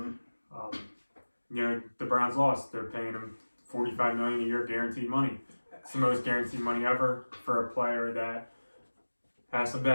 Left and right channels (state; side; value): inverted; both; correlation -1.00